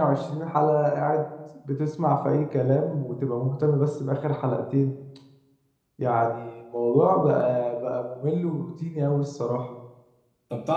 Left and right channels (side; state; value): both; identical; correlation 1.00